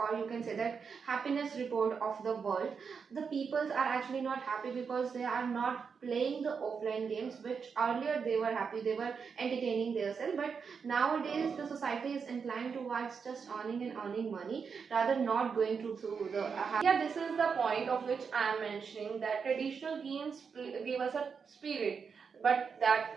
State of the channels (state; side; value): quieter; left; 5.9 dB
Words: you can say that happiness report of the world, the peoples are actually not happy because they are not playing the offline games, which earlier they were happy, they were entertaining themselves. But nowadays the society is inclined towards just earning and earning money, rather not going through the. Yeah, this is the point of which I am mentioning, that traditional games give us a spirit, but that